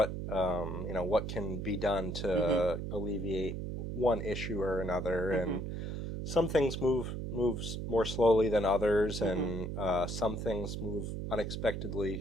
you know, what can be done to alleviate one issue or another. And some things move more slowly than others, and some things move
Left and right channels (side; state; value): right; noise; hum, 4 dB below the sound